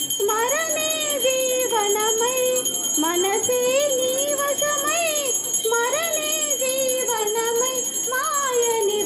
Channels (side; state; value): both; identical; correlation 1.00